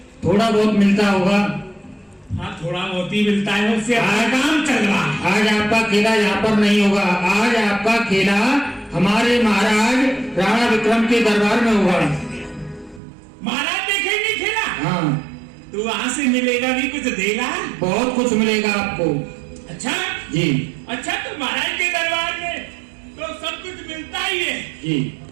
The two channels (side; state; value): left; drops out; at 13.0 s